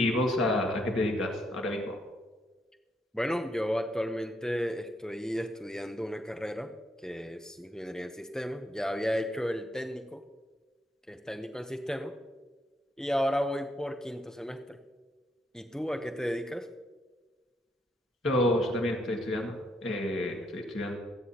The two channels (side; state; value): both; normal; correlation 0.75